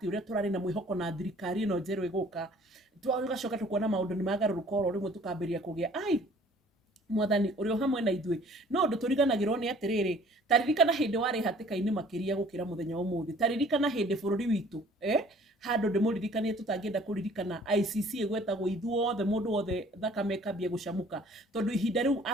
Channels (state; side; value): normal; both; correlation 0.54